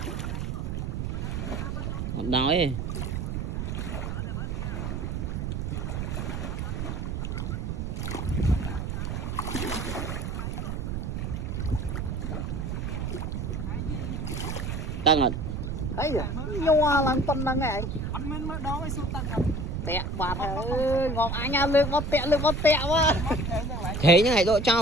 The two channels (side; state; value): right; noise; rumble, 2 dB below the sound